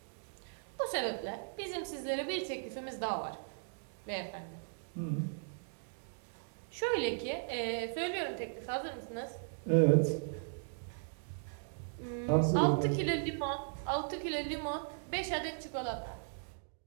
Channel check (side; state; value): left; silent; digital silence